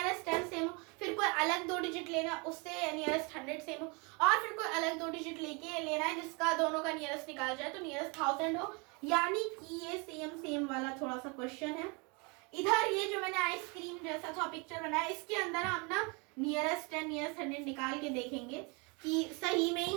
10 सेम हो, फिर कोई अलग 2 डिजिट लेना उससे नियरेस्ट 100 सेम हो, और फिर कोई अलग 2 डिजिट लेके लेना है जिसका दोनों का नियरेस्ट निकाल जाए तो नियरेस्ट 1000 हो। यानी कि ये सेम वाला थोड़ा सा क्वेश्चन है। इधर ये जो मैंने आइसक्रीम जैसा था पिक्चर बनाया, इसके अंदर हम ना नियरेस्ट 10, नियरेस्ट 100 निकाल के देखेंगे कि सही में ही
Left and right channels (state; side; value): quieter; left; 30.9 dB